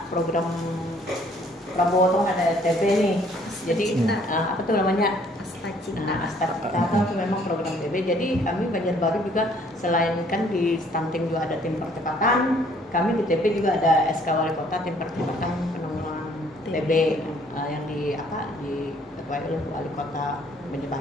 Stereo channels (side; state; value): both; normal; correlation 0.61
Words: program Prabowo tuh ada TB nih. Jadi apa tuh namanya? Asta Cita itu memang program TB. Jadi kami Banjarbaru juga selain kan di stunting juga ada tim percepatan, kami di TB juga ada SK Wali Kota tim percepatan penanggulangan TB yang diketuai oleh Wali Kota